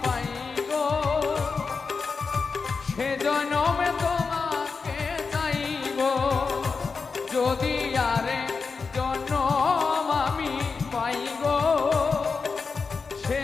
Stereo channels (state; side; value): quieter; right; 4.9 dB